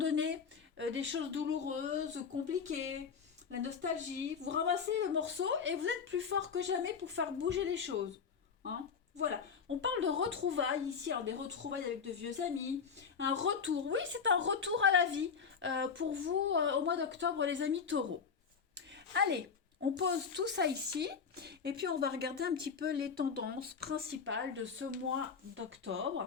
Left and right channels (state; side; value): quieter; right; 6.1 dB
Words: des choses douloureuses, compliquées, la nostalgie. Vous ramassez le morceau et vous êtes plus fort que jamais pour faire bouger les choses. Hein. Voilà, on parle de retrouvailles ici, alors des retrouvailles avec de vieux amis, un retour, oui c'est un retour à la vie pour vous au mois d'octobre les amis taureaux. Allez, on pose tout ça ici et puis on va regarder un petit peu les tendances principales de ce mois d'octobre.